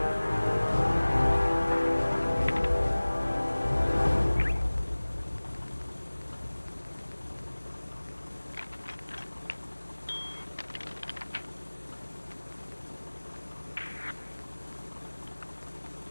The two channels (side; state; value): both; inverted; correlation -1.00